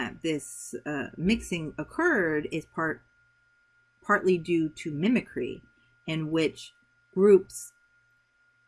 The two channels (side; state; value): both; identical; correlation 1.00